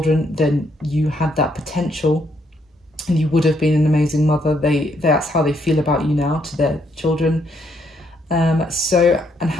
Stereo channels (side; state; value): both; normal; correlation 0.73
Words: then you had that potential. And you would have been an amazing mother. That's how they feel about you now to their children. And